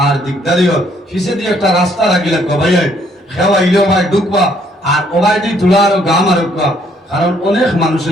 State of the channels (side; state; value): both; normal; correlation 0.66